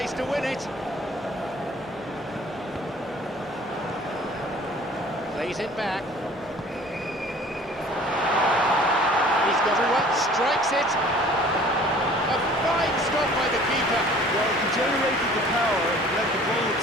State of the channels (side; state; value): both; normal; correlation 0.50